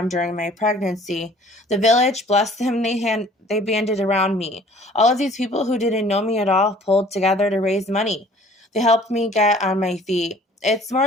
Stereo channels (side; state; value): both; normal; correlation 0.52